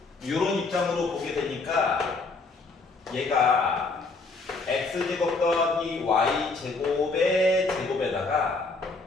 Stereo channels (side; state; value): right; quieter; 3.8 dB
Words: 이런 입장으로 보게 되니까 얘가 x제곱 더하기 y제곱의 제곱에다가